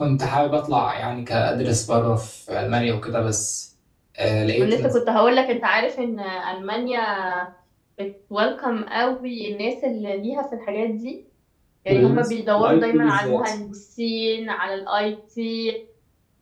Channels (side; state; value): both; identical; correlation 1.00